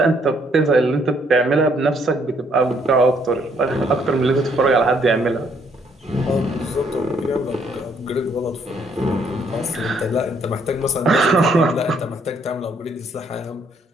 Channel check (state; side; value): normal; both; correlation 0.68